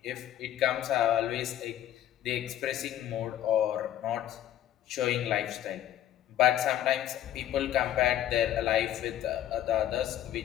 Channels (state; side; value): quieter; right; 11.8 dB